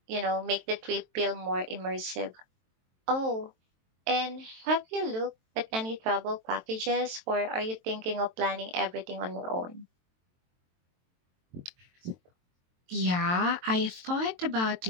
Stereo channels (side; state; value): left; late; 22 ms